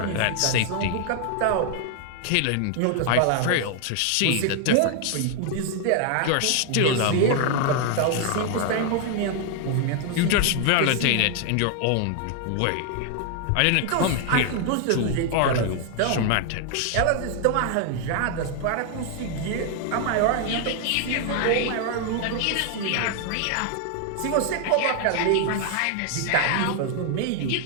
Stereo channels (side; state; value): both; different; correlation 0.00